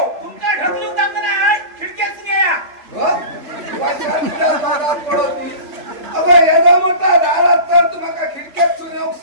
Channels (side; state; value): left; late; 3.4 ms